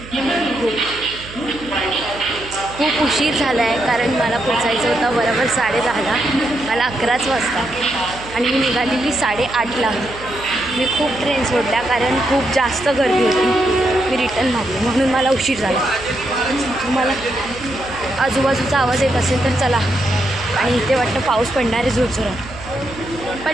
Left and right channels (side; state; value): right; noise; hum, 16 dB below the sound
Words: खूप उशीर झाला आहे, कारण मला पोचायचं होतं बरोबर 10:30ला. मला 11च वाजता आणि मी निघालेली 8:30ला. मी खूप ट्रेन सोडल्या, कारण खूप जास्त गर्दी होती. मी रिटर्न मारली, म्हणून मला उशीर झाला. तुम्हाला आजूबाजूचा आवाज येत असेल तर चला. आणि इथे वाटतं पाऊस पडणार आहे जोरजोरात.